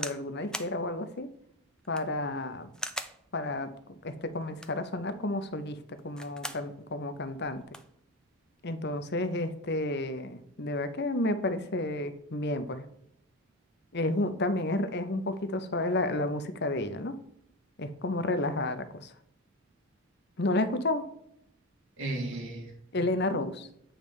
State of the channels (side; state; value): both; normal; correlation 0.19